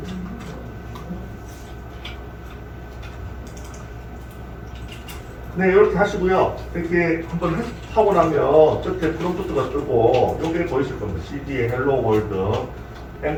네, 이렇게 하시고요. 이렇게 한번 하고 나면 끝에 프롬프트가 뜨고 요게 보이실 겁니다. CD의 Hello World,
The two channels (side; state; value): both; identical; correlation 1.00